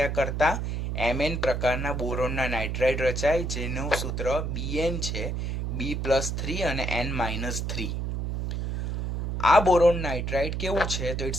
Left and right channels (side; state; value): right; noise; hum, 2 dB below the sound